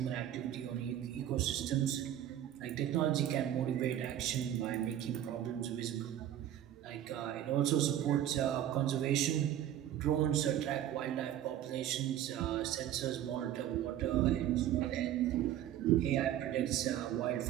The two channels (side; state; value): left; quieter; 11.5 dB